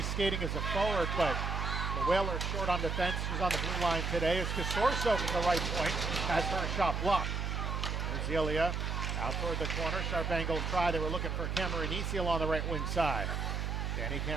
skating as a forward, but the Whalers short on defense. She's on the blue line today. As Casorso from the right point has her shot blocked. There's Ilya out toward the corner. Sharp angle try. They were looking for Cameronisi along the right wing side. Danny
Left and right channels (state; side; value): noise; right; hum, 1 dB below the sound